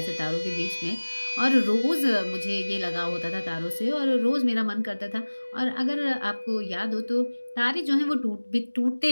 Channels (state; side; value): inverted; both; correlation -1.00